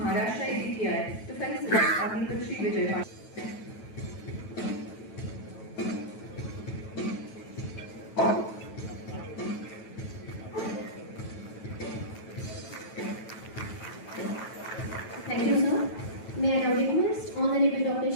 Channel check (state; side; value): late; right; 9.2 ms